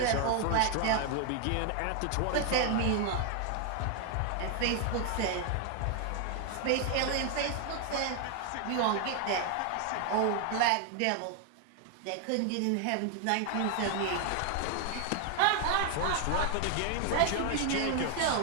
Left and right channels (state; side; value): different; both; correlation 0.00